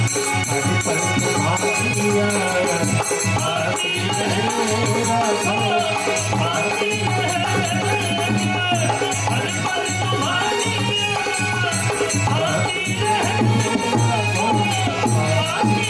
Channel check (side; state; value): both; identical; correlation 1.00